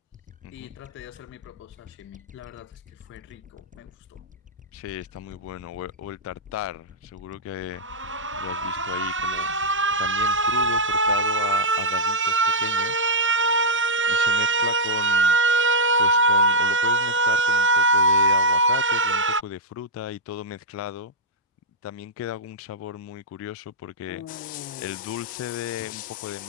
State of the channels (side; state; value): both; normal; correlation -0.07